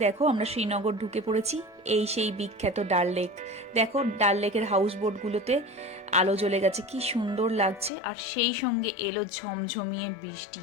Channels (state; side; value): drops out; right; at 7.9 s